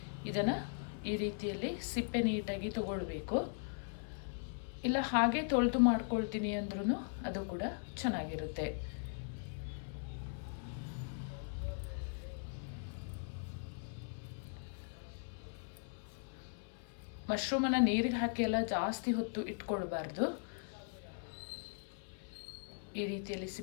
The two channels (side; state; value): right; silent; 52 dB below the other